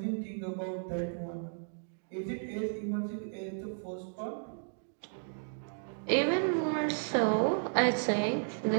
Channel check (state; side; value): silent; left; digital silence